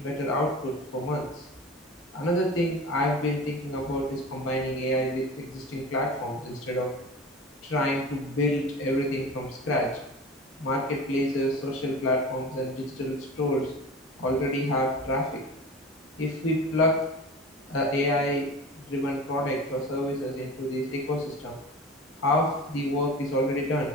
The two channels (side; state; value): both; normal; correlation 0.34